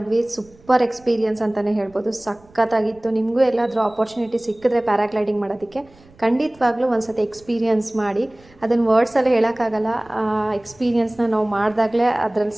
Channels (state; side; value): noise; right; rumble, 27 dB below the sound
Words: ಸೂಪರ್ ಎಕ್ಸ್ಪೀರಿಯನ್ಸ್ ಅಂತಲೇ ಹೇಳ್ಬೋದು. ಸಖತ್ತಾಗಿತ್ತು. ನಿಮಗೂ ಎಲ್ಲಾದರೂ ಆಪರ್ಚುನಿಟಿ ಸಿಕ್ಕಿದ್ರೆ ಪ್ಯಾರಾಗ್ಲೈಡಿಂಗ್ ಮಾಡೋದಕ್ಕೆ ಖಂಡಿತವಾಗ್ಲೂ ಒಂದು ಸತಿ ಎಕ್ಸ್ಪೀರಿಯನ್ಸ್ ಮಾಡಿ. ಅದನ್ನು ವರ್ಡ್ಸಲ್ಲಿ ಹೇಳೋಕ್ಕಾಗಲ್ಲ. ಎಕ್ಸ್ಪೀರಿಯನ್ಸ್ನ ನಾವು ಮಾಡಿದಾಗಲೇ ಅದರಲ್ಲಿ